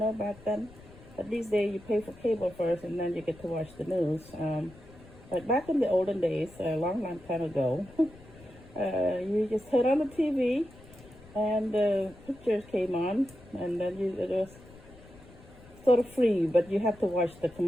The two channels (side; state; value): left; noise; rumble, 21 dB below the sound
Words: back then. But these days you pay for cable first and then you get to watch the news. But back in the olden days, a long time ago, you just turn on the TV and the pictures came on, and then it was sort of free, but you have to watch the